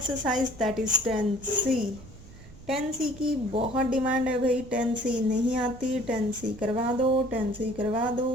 that is 10C. 10C की बहुत demand है भाई, 10C नहीं आती, 10C करवा दो, 10C करवा दो।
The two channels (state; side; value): noise; right; rumble, 18 dB below the sound